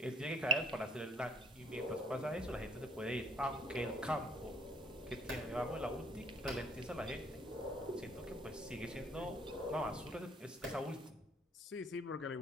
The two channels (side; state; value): both; normal; correlation 0.59